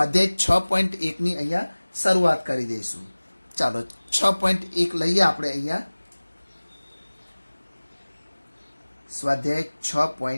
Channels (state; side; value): inverted; both; correlation -1.00